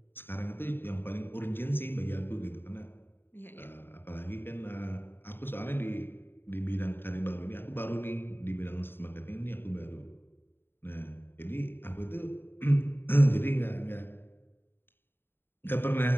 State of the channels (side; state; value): right; late; 0.10 ms